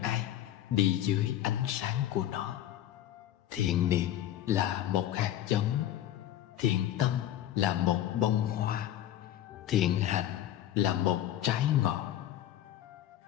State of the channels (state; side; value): quieter; right; 12.1 dB